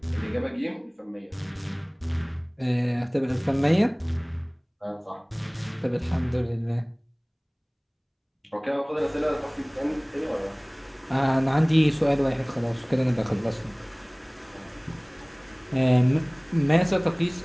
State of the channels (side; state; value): both; identical; correlation 1.00